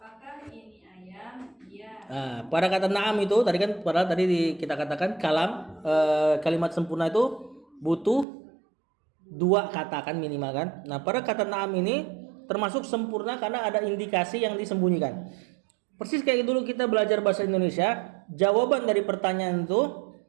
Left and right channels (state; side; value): drops out; left; at 8.2 s